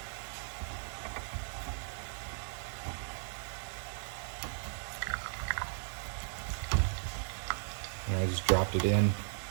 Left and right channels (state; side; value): silent; left; 54 dB below the other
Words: And I just dropped it in.